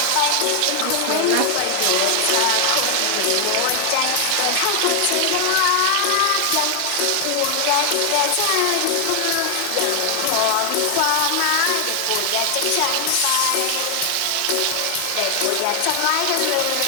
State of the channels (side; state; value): both; different; correlation 0.00